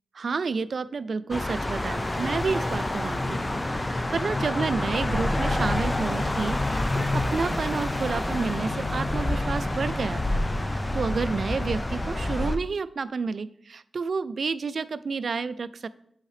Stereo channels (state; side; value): normal; both; correlation 0.92